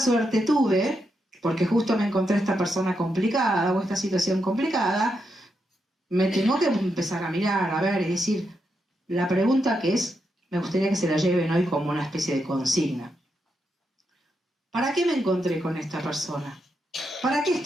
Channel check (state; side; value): normal; both; correlation 0.83